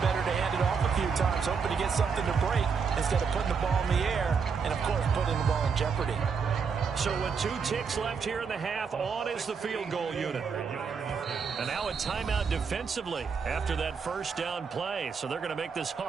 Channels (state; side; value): quieter; left; 5.9 dB